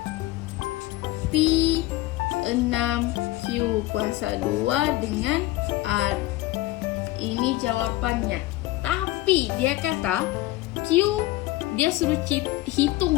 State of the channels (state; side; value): quieter; right; 17.8 dB